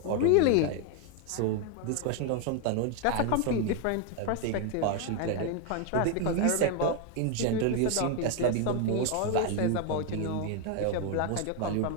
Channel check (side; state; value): both; different; correlation 0.01